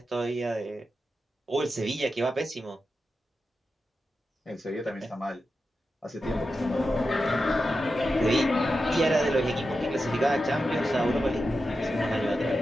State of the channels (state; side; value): normal; both; correlation 0.90